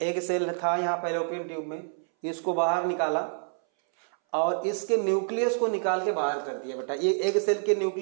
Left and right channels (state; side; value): silent; left; 60 dB below the other